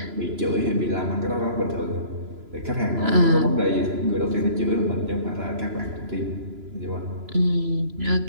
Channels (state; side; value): late; left; 3.0 ms